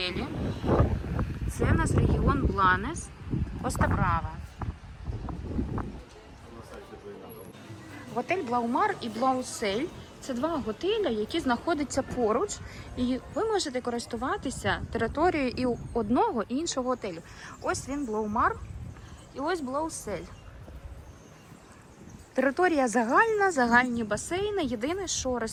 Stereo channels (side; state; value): both; identical; correlation 1.00